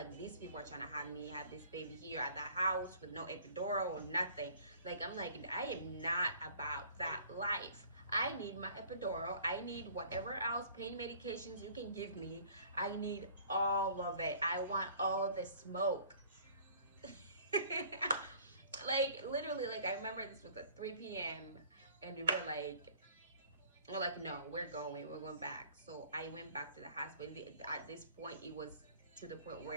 these people are trying to have me have this baby here at the house with no epidural or nothing. Like, I'm like, I am not about that life. I need my epidural. I need whatever else pain medications you can give me. I need all of it. I want all the smoke. Like, literally, like, I remember this was at 3 p.m. and we were like, no, we're going back. So I went back to the hospital. At this point, it was to the point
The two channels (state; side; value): inverted; both; correlation -0.52